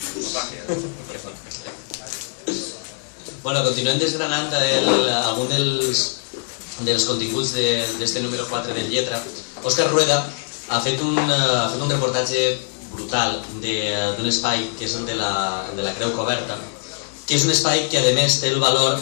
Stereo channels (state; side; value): silent; right; 56 dB below the other